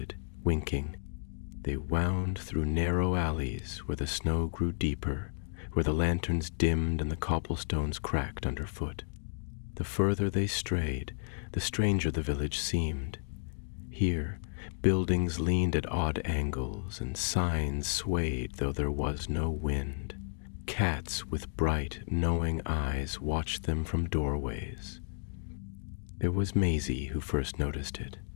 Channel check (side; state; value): right; silent; digital silence